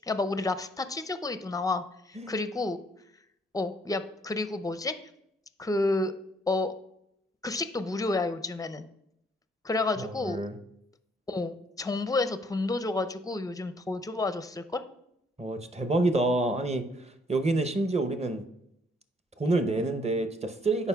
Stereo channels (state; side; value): normal; both; correlation 0.66